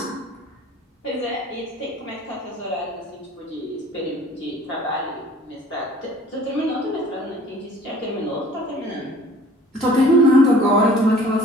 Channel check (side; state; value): both; normal; correlation 0.50